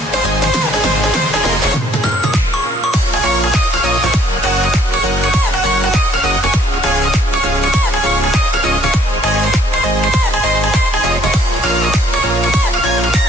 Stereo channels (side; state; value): both; normal; correlation 0.64